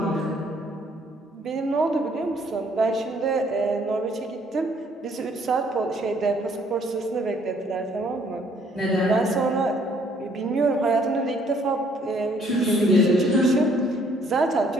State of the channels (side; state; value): both; normal; correlation 0.63